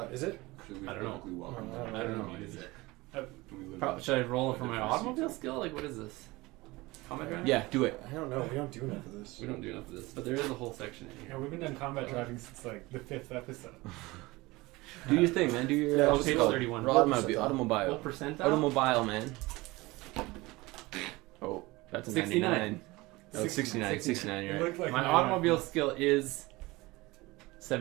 Is it? I don't know. I don't know. What is it? Probably, Should I roll it for my automobile skill? Like, what is this? Combat driving? Yeah, do it. I don't know. We don't do enough of this. We don't do enough of this, but there is a whole section in Yeah, here. we've been done combat driving since like the 5th episode. Do your thing, man. Do your. Yeah, what's page it called? 31. Automobile. What Automobile. percentile? Automobile, man. Oh, that's a 69. 99. Oh, it's 69. 69, It you're right. looked like My automobile skill is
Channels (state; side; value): quieter; left; 21.5 dB